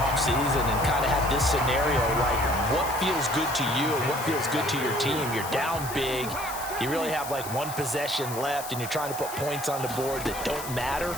and kind of had this scenario, like what feels good to you and what feels good to your team. You're down big. You really have like 1 possession left, and you're trying to put points on the board that don't matter.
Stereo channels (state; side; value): noise; left; hiss, 10 dB below the sound